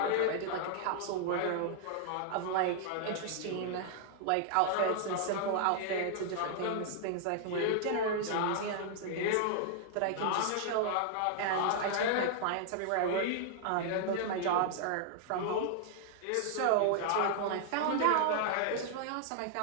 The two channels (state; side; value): different; both; correlation -0.01